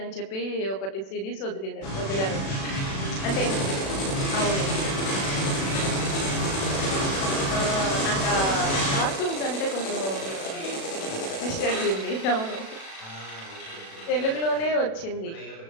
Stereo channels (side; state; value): right; late; 36 ms